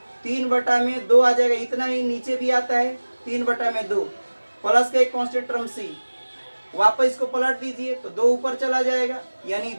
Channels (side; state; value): both; inverted; correlation -1.00